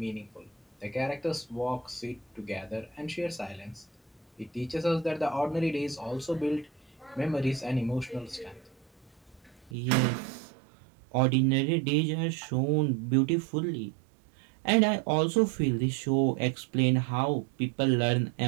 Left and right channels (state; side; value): drops out; left; at 9.8 s